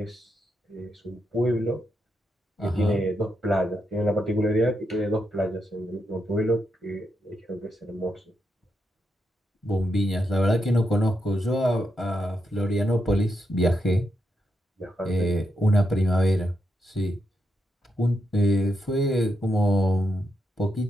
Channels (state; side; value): normal; both; correlation 0.83